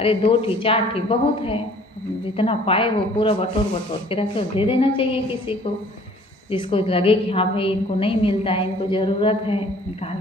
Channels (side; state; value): both; normal; correlation 0.54